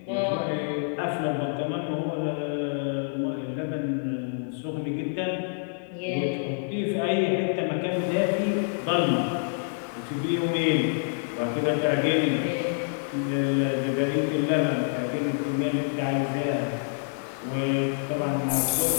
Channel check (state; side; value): silent; right; digital silence